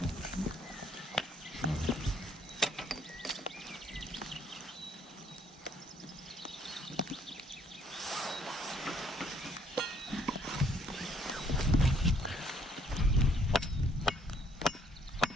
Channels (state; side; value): normal; both; correlation 0.65